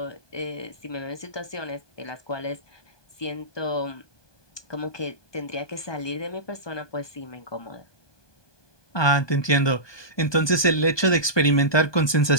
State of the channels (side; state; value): right; late; 1.2 ms